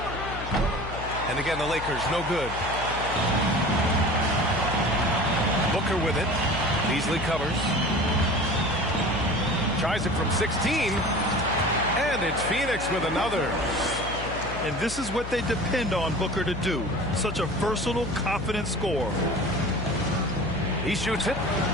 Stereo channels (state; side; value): noise; left; hum, 9 dB below the sound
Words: And again, the Lakers no good. Booker with it. Beasley covers. Tries it from 16. And it's Phoenix with another. And this is what they depend on Booker to do. Such a versatile, confident scorer. He shoots it.